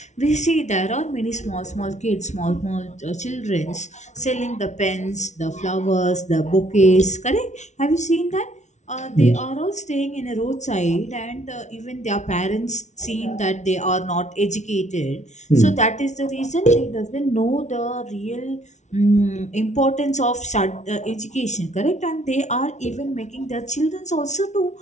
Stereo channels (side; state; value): right; late; 0.33 ms